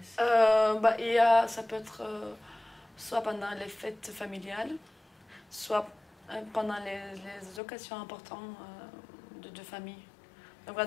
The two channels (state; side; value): drops out; right; at 7.6 s